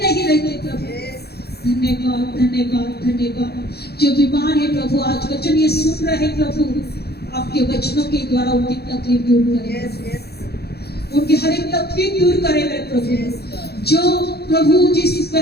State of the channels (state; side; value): late; right; 0.47 ms